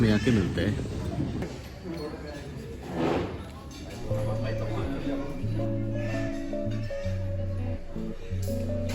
में आके मिलते हैं.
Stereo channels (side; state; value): both; identical; correlation 1.00